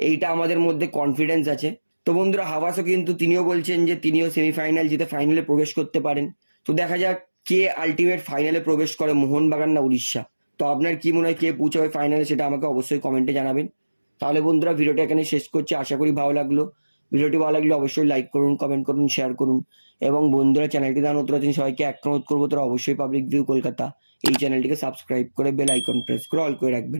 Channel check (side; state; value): both; inverted; correlation -1.00